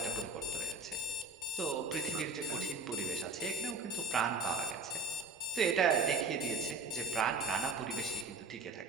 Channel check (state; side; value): quieter; left; 3.7 dB